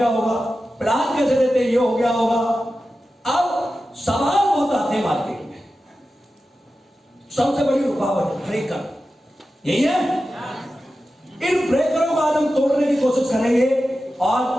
होगा, प्लान कैसे देते ये हो गया होगा। अब सवाल बहुत आते हैं मार्केट में, सबसे बड़ी रुकावट ब्रेकर, यही है। इन ब्रेकरों को आज हम तोड़ने की कोशिश करेंगे और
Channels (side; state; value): both; normal; correlation 0.93